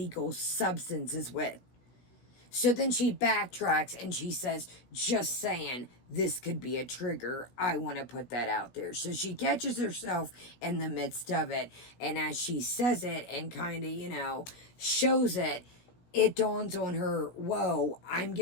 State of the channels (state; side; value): late; right; 16 ms